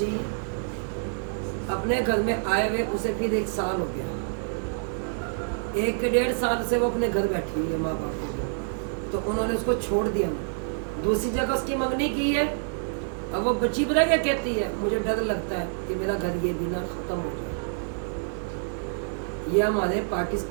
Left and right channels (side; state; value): left; silent; digital silence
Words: अपने घर में आए हुए उसे फिर 1 साल हो गया, 1-1.5 साल से वो अपने घर बैठी हुई है माँ बाप के घर। तो उन्होंने उसको छोड़ दिया, दूसरी जगह उसकी मंगनी की है। अब वो बच्ची पता क्या कहती है, मुझे डर लगता है कि मेरा घर ये बिना ख़त्म हो जाए। ये हमारे